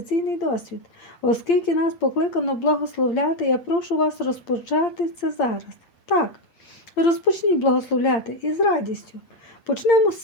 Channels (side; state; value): right; late; 8.7 ms